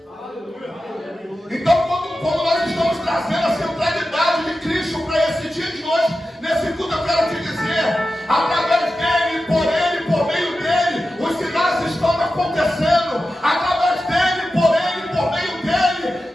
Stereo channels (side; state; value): both; normal; correlation 0.92